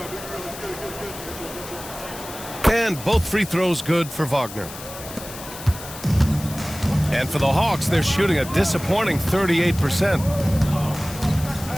And both free throws good for Wagner. And for the Hawks, they're shooting a disappointing 38%.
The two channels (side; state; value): left; noise; hiss, 13 dB below the sound